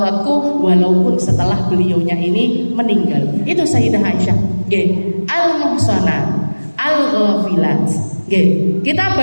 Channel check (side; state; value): both; inverted; correlation -1.00